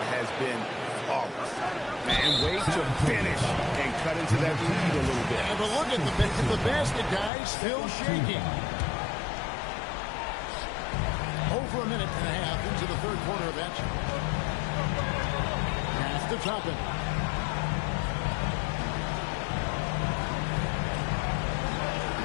has been flawless. And way to finish and cut into that lead a little bit. Yeah, but look at the basket, guys, still shaking. Over a minute and a half into the third quarter of action. Pass to Toppin.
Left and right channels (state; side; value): drops out; right; at 7.3 s